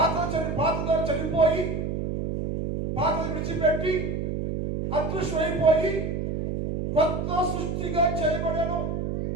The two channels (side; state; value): right; noise; hum, 2 dB below the sound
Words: చనిపోయి పాత విడిచిపెట్టి అదృశ్యమైపోయి కొత్త సృష్టిగా చేయబడను.